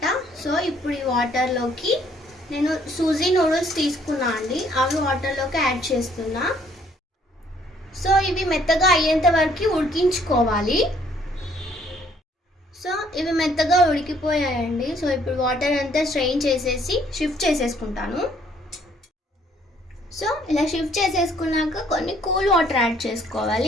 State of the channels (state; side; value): normal; both; correlation 0.64